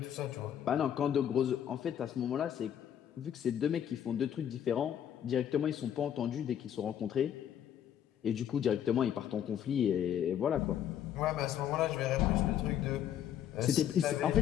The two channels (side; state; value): right; quieter; 9.9 dB